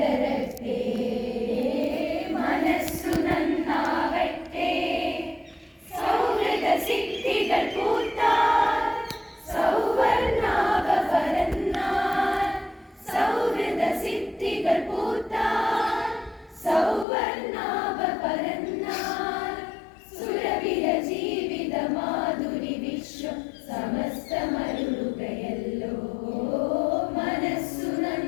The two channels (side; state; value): right; drops out; at 17.1 s